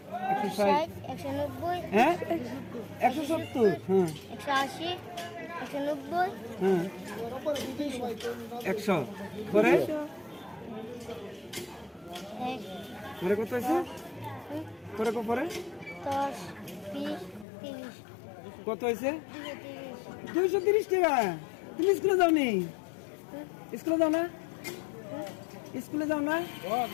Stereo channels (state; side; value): drops out; right; at 17.4 s